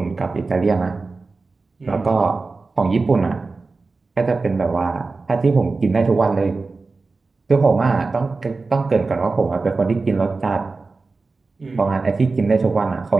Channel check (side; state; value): left; quieter; 3.9 dB